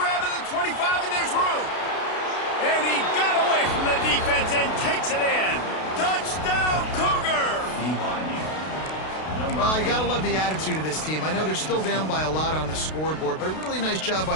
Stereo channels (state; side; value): late; right; 32 ms